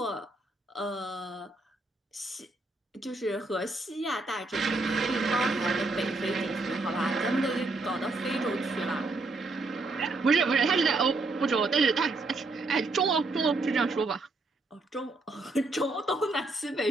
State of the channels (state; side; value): quieter; left; 3.2 dB